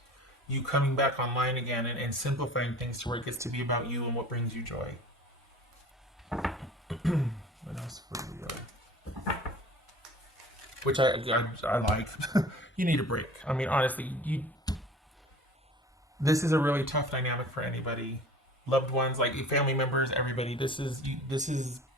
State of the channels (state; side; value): normal; both; correlation 0.43